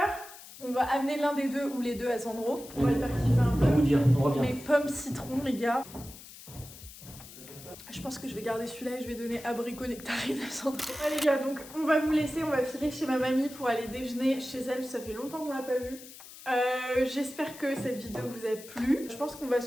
On va amener l'un des deux ou les deux à Sandro, on va le faire kiffer un On va peu. vous dire, on revient. Les pommes citron, les gars. Je pense que je vais garder celui-là et je vais donner abricot nectarine à Sandro. Ouais les gars, donc on va vous laisser, on va filer chez ma mamie pour aller déjeuner chez elle, ça fait longtemps qu'on l'a pas vue. J'espère que cette vidéo vous a plu. Je pense qu'on va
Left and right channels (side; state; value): left; noise; hiss, 17 dB below the sound